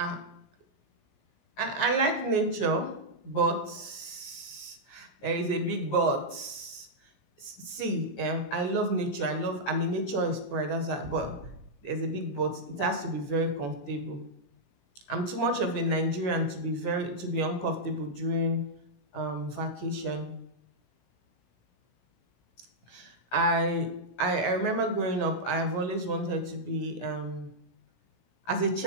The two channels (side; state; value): right; late; 17 ms